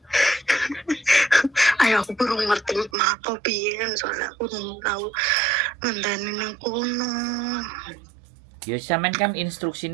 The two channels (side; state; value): left; drops out; at 2.9 s